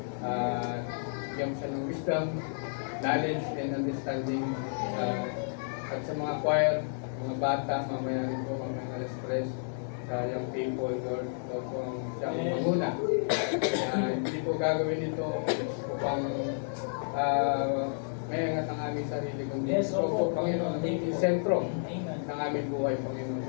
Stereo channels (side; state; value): right; silent; digital silence